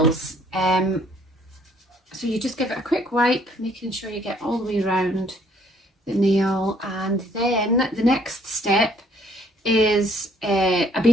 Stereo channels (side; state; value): both; normal; correlation 0.63